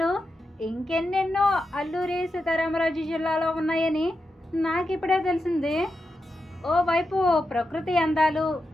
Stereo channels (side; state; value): both; normal; correlation 0.88